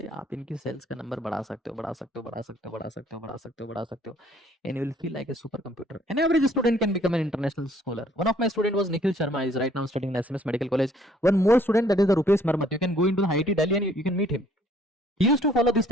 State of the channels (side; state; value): both; normal; correlation 0.61